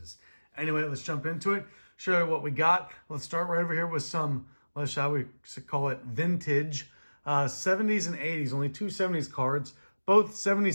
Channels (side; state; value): both; inverted; correlation -1.00